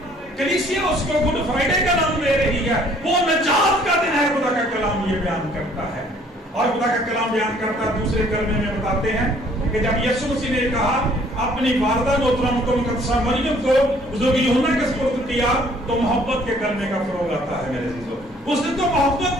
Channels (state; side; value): normal; both; correlation 0.59